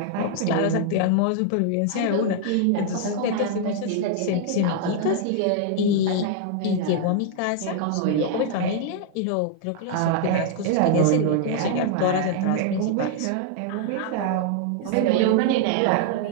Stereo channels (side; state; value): both; different; correlation 0.00